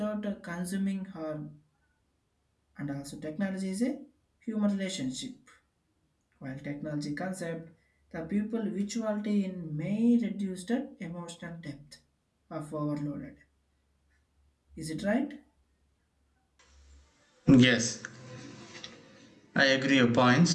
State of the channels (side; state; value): both; identical; correlation 1.00